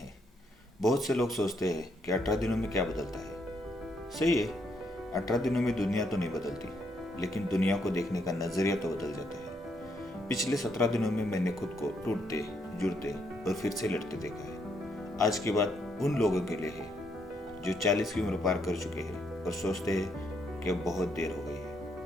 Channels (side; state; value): both; normal; correlation 0.75